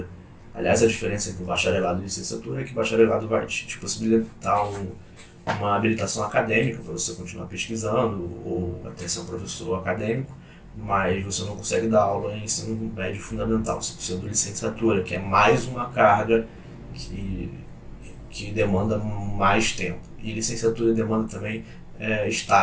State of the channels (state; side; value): identical; both; correlation 1.00